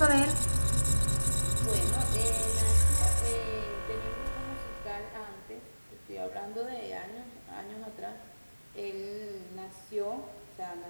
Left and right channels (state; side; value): inverted; both; correlation -1.00